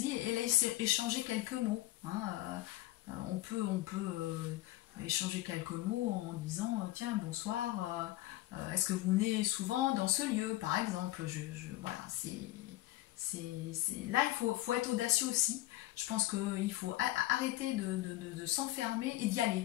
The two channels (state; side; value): quieter; right; 16.5 dB